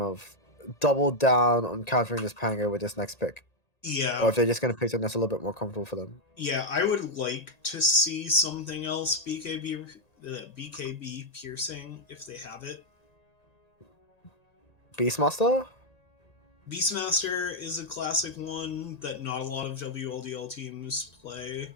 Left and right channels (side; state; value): right; late; 1.9 ms